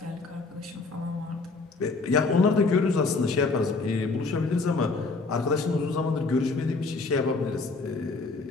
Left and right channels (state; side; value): quieter; right; 3.8 dB